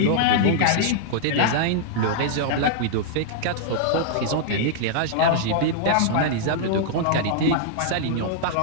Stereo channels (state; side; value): different; both; correlation -0.01